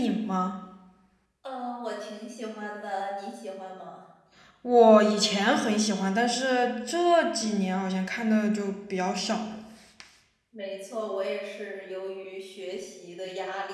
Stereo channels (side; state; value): both; identical; correlation 1.00